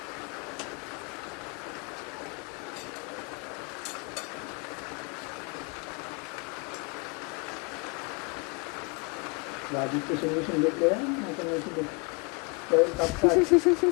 भाजीचे शेंगे शेंगे आता माहिती त्यावर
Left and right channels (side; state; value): right; quieter; 31.6 dB